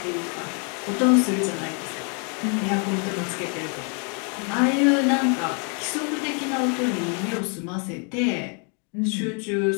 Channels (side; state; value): right; quieter; 38.0 dB